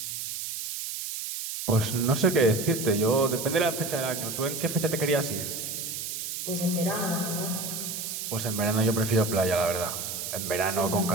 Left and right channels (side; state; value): right; noise; hiss, 5 dB below the sound